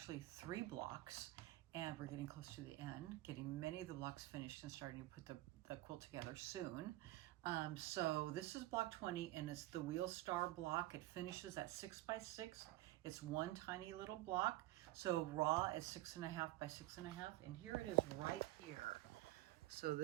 3 blocks, and we're getting close to the end, getting many of the blocks finished and starting to put the quilt together soon. So this is block 20, and it's the wheel star block. It finishes at 6 by 6. It's one tiny little block. So raw is 6.5 by 6.5, and here it is right here. So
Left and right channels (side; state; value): left; quieter; 16.9 dB